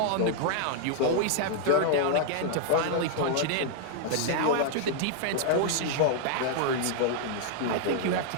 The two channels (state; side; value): different; both; correlation -0.01